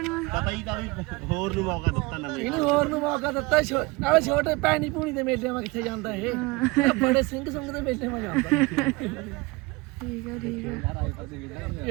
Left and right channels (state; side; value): quieter; left; 24.3 dB